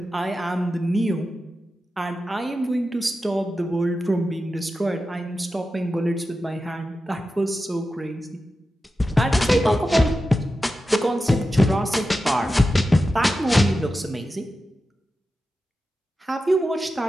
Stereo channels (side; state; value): both; normal; correlation 0.92